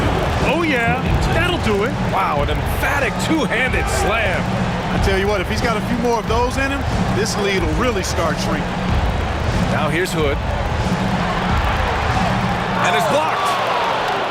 Oh, yeah, that'll do it. Wow, an emphatic two-handed slam. I tell you what, if he's got a few more of those in him, this lead will really start shrinking. Now here's Hood. And it's blocked.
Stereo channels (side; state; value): both; identical; correlation 1.00